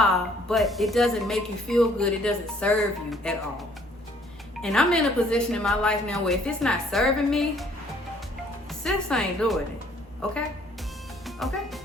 But it doesn't make you feel good. It doesn't serve you at all. And I'm in a position in my life now where if it's not serving me, sis ain't doing it. Okay? Okay?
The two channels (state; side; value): normal; both; correlation 0.61